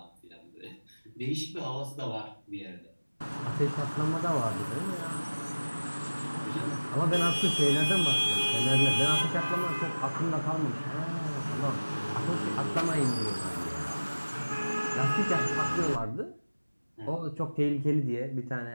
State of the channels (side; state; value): both; inverted; correlation -1.00